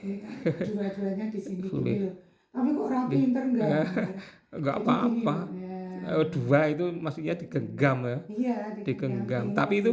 Dua-duanya di sini boleh. Tapi kok rapi pinter enggak apa-apa. Dua itu maksudnya digenggam ya. Iya, digenggam. Tapi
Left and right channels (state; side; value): identical; both; correlation 1.00